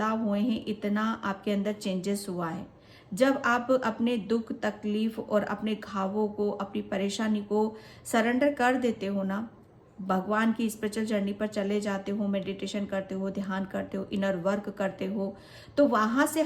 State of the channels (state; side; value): identical; both; correlation 1.00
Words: हुए हैं, इतना आपके अंदर चेंजेस हुआ है। जब आप अपने दुख तकलीफ और अपने घावों को, अपनी परेशानी को सरेंडर कर देते हो ना, भगवान की स्पिरिचुअल जर्नी पर चले जाते हो, मेडिटेशन करते हो, ध्यान करते हो, इनर वर्क करते हो, तो वहां से